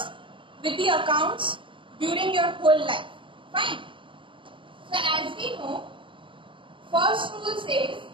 with the accounts during your whole life. Fine. So as we know, first rule says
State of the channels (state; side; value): late; left; 0.25 ms